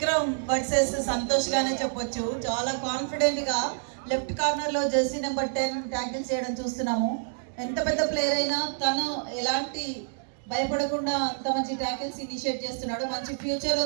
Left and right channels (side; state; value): left; silent; digital silence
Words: వర్సెస్ సంతోష్ గానే చెప్పొచ్చు. చాలా కాన్ఫిడెంట్ గా లెఫ్ట్ కార్నర్ లో జెర్సీ నెంబర్ 10 ట్యాకిల్ చేయడం చూస్తున్నాము. ఎంత పెద్ద ప్లేయర్ అయినా తను ఎలాంటి భయపడకుండా అంత మంచి ట్యాకిల్స్ ఇనిషియేట్ చేస్తున్నాడు. మంచి ఫ్యూచర్